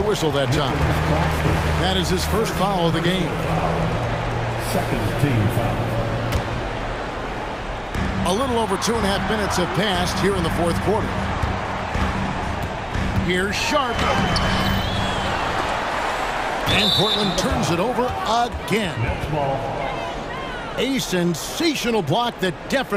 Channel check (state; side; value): identical; both; correlation 1.00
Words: whistle that time. That is his first foul of the game. Second team foul. A little over 2.5 minutes have passed here in the fourth quarter. Here's Sharp. And Portland turns it over again. Next ball. A sensational block that